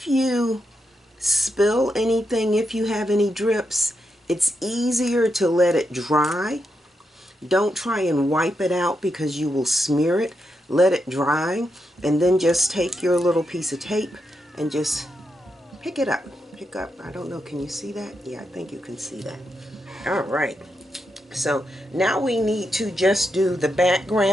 you spill anything, if you have any drips, it's easier to let it dry. Don't try and wipe it out because you will smear it. Let it dry, and then just take your little piece of tape and just pick it up. Pick up, I don't know, can you see that? Yeah, I think you can see that. All right, so now we need to just do the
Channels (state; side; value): normal; both; correlation 0.84